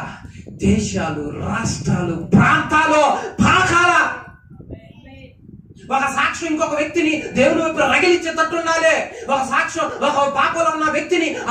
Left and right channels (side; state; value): both; identical; correlation 1.00